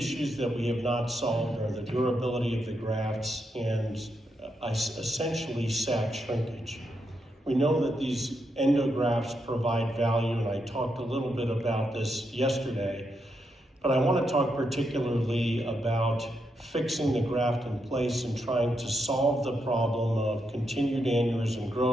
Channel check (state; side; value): normal; both; correlation 0.82